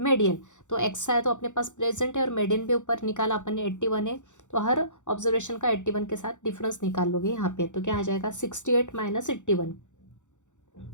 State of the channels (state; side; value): late; right; 0.85 ms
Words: तो एक्सआई तो अपने पास प्रेजेंट है और मीडियन भी ऊपर निकाला अपन ने 81 है, तो हर ऑब्जर्वेशन का 81 के साथ डिफरेंस निकाल लोगे यहाँ पे। तो क्या आ जाएगा 68 माइनस 81